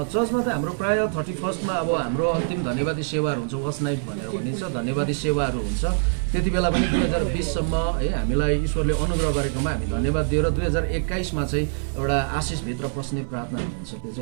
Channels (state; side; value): silent; left; 59 dB below the other